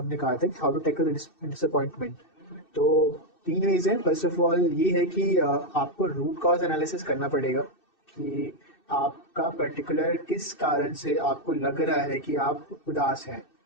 कहा था कि हाउ टू टैकल डिसअपॉइंटमेंट। तो 3 वेज हैं। फर्स्ट ऑफ ऑल ये है कि आपको रूट कॉज एनालिसिस करना पड़ेगा। कि आपका पर्टिकुलर किस कारण से आपको लग रहा है कि आप उदास हैं,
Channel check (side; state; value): right; late; 2.6 ms